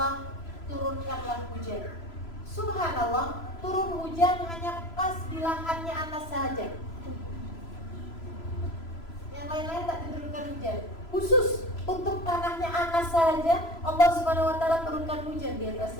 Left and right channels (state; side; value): late; right; 3.0 ms